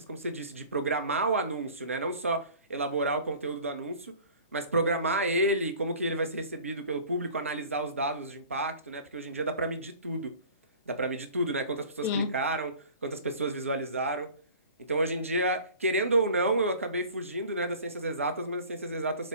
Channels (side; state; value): both; inverted; correlation -0.45